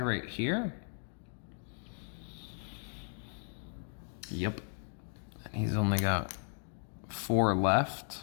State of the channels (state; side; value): silent; right; 54 dB below the other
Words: here. Yep. And he's only got 4